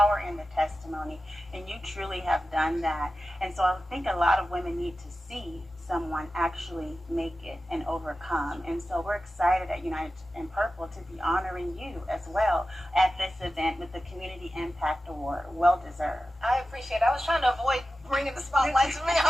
in the testimony, and you truly have done that. And so I think a lot of women need to see someone actually make it and overcome. And so we're excited at United in Purple to be honoring you as well at this event with the Community Impact Award. Well deserved. I appreciate it. I was trying to avoid bringing the spotlight to me.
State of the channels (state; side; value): normal; both; correlation 0.93